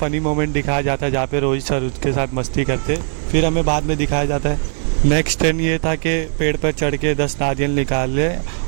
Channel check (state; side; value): silent; left; digital silence